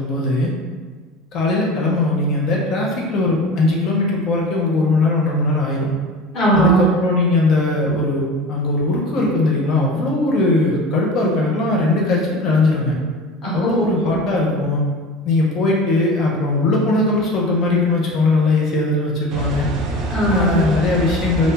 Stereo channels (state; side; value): normal; both; correlation 0.35